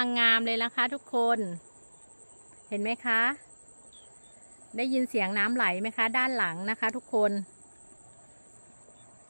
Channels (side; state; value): both; inverted; correlation -1.00